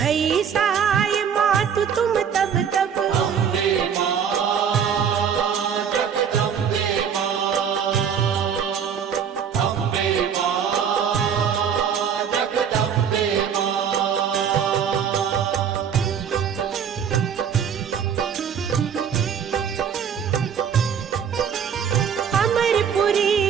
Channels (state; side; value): quieter; left; 7.7 dB